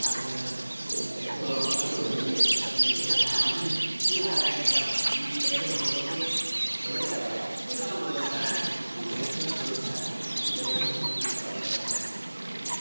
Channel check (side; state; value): both; inverted; correlation -1.00